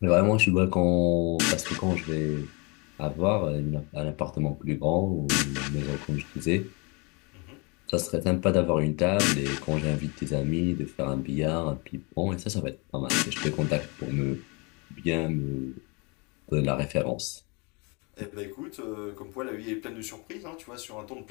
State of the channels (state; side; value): quieter; right; 30.3 dB